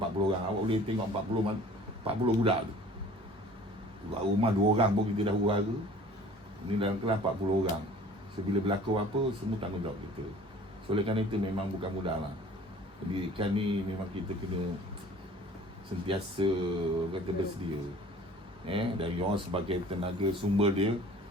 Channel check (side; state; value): both; normal; correlation 0.48